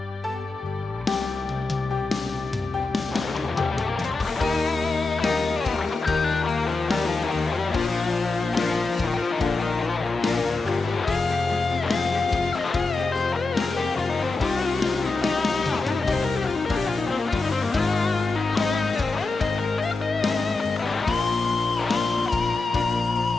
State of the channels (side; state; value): right; quieter; 3.5 dB